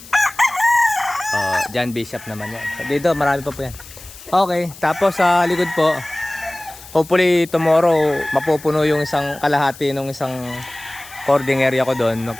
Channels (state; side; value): noise; left; hiss, 18 dB below the sound